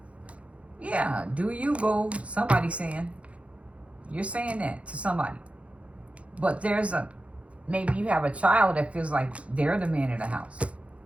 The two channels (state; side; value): late; left; 0.063 ms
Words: Yeah, do you, boo? Somebody saying. You're saying that to somebody. But there's maybe you have a child that feels like they're the man of the house.